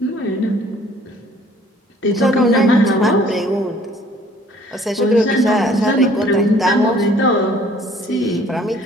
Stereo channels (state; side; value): normal; both; correlation 0.56